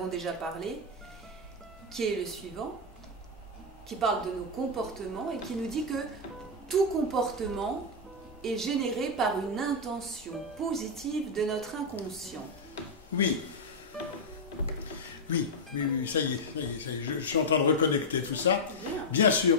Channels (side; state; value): both; normal; correlation -0.01